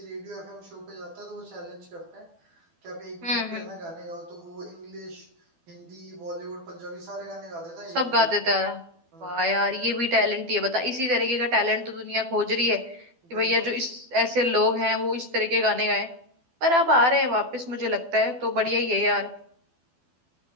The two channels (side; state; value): left; late; 12 ms